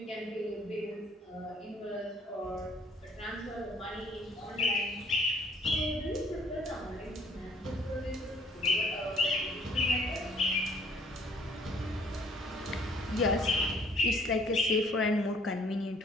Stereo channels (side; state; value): both; normal; correlation 0.59